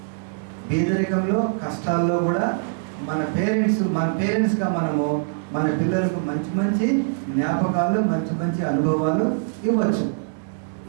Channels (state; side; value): silent; left; digital silence